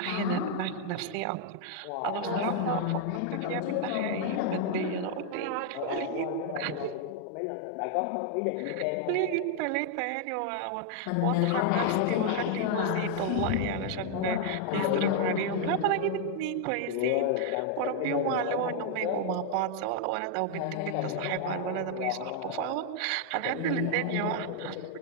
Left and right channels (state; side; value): different; both; correlation 0.00